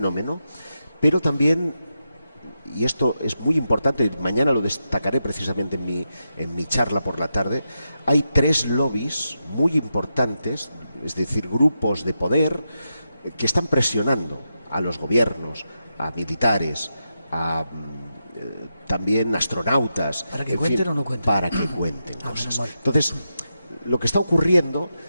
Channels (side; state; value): both; inverted; correlation -0.87